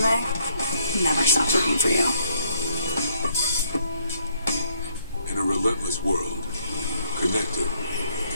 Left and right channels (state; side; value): inverted; both; correlation -0.68